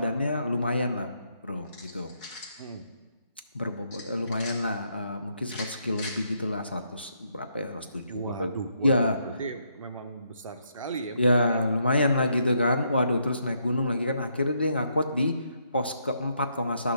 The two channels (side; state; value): both; inverted; correlation -0.75